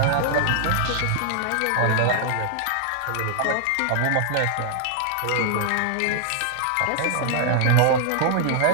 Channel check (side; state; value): both; different; correlation -0.01